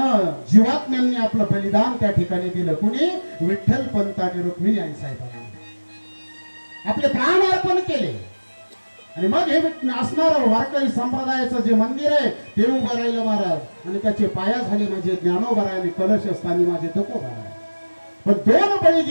जीवात्म्यांनी आपलं बलिदान त्या ठिकाणी दिलं. कुणी? विठ्ठल पंत आणि रुक्मिणी आई साहेबांनी आपले प्राण अर्पण केले. आणि मग हे असणार वारकरी संप्रदायाचं जे मंदिर आहे ते उभं राहिलं महाराज. आणि त्याचे पाया झाले माझे ज्ञानोबा आणि कलश स्थानी माझे तुकोबा. पण दोन बळी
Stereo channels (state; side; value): inverted; both; correlation -1.00